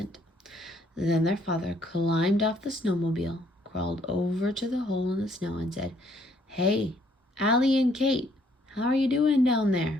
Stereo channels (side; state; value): both; normal; correlation 0.66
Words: Then their father climbed off the snowmobile, crawled over to the hole in the snow, and said, "Hey, Allie and Kate, how are you doing down